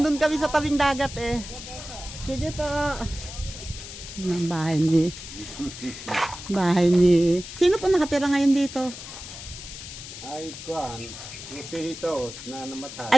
kami sa tabing dagat eh. Sige po. Ang bahay ni sino po nakatira ngayon dito? Ay, kuan. Yung si Jesus na namatay.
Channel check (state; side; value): noise; left; hiss, 12 dB below the sound